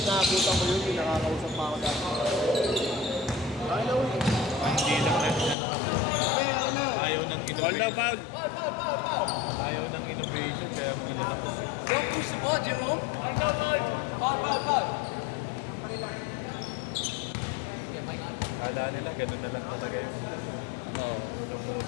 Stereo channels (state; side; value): drops out; right; at 5.6 s